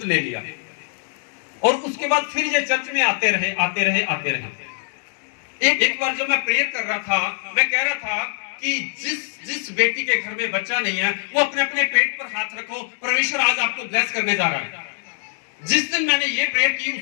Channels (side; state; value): right; silent; digital silence